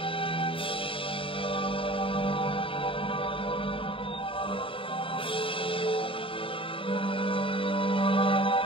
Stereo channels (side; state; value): right; late; 0.26 ms